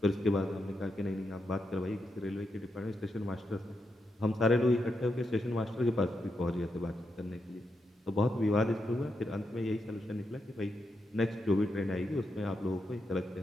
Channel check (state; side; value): normal; both; correlation 0.84